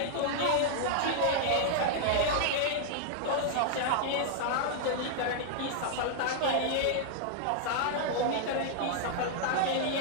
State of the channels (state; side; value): different; both; correlation 0.00